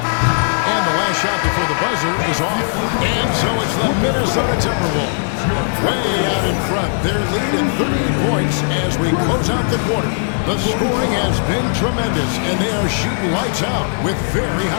And the last shot before the buzzer is off. And so it's the Minnesota Timberwolves. Way out in front. They're leading 38 points as we close out the quarter. The scoring has been tremendous, and they are shooting lights out with very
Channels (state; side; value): silent; right; digital silence